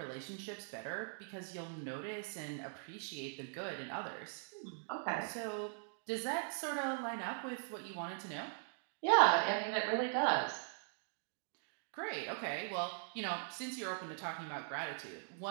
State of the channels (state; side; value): silent; left; digital silence